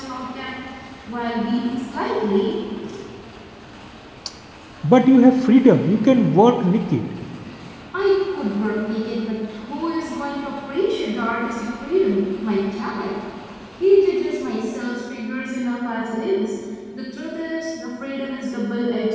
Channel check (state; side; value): identical; both; correlation 1.00